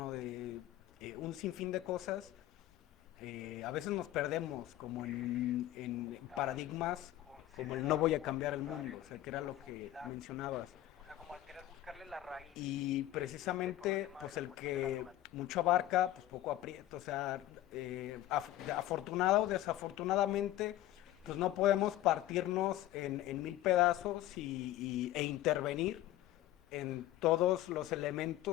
de un sinfín de cosas, a veces nos perdemos como en paradigmas como el no voy a cambiar el mundo, o sea, que era lo que mencionabas. Y precisamente, pues el que mucho abarca, pues poco aprieta, o sea, afortunado o desafortunadamente, pues no podemos partirnos en mil pedazos e intervenir en todos los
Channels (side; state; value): right; quieter; 14.4 dB